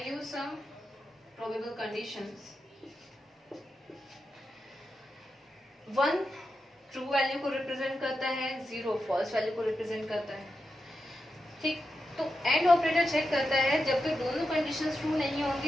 use some probable conditions. 1 true value को represent करता है, 0 false value को represent करता है। ठीक, तो and operator check करता है जब तक दोनों कंडीशंस ट्रू नहीं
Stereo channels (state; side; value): normal; both; correlation 0.89